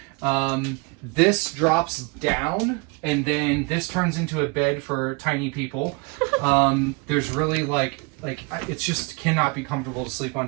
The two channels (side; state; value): left; quieter; 30.8 dB